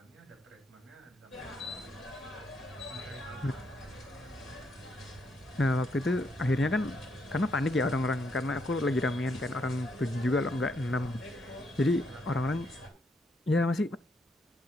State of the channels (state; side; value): normal; both; correlation 0.75